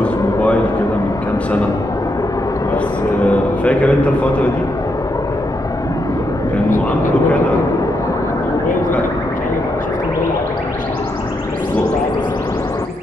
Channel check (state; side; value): normal; both; correlation 0.81